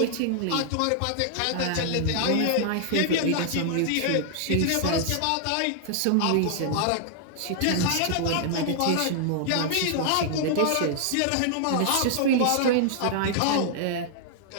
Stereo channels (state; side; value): different; both; correlation 0.00